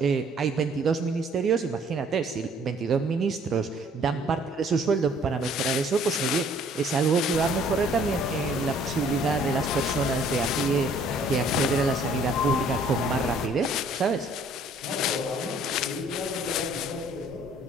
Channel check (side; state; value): both; normal; correlation 0.59